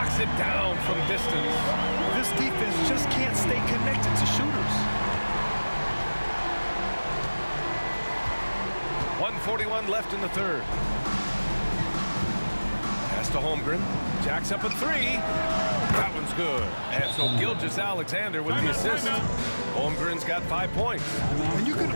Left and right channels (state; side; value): inverted; both; correlation -1.00